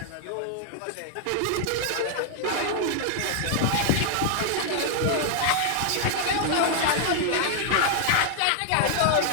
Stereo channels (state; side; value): different; both; correlation 0.00